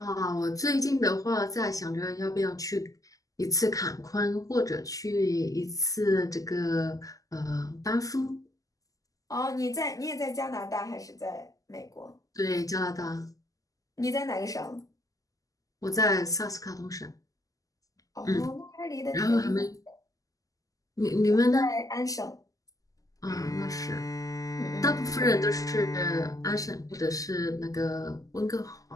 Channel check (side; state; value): right; late; 0.17 ms